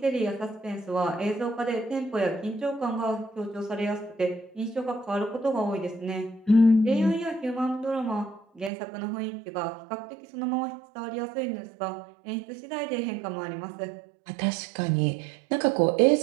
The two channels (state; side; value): drops out; left; at 8.7 s